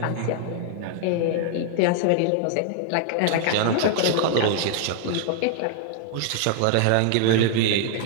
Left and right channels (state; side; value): different; both; correlation -0.01